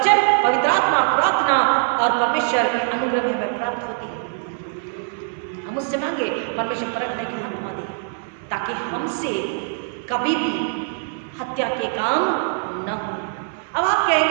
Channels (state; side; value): silent; left; 64 dB below the other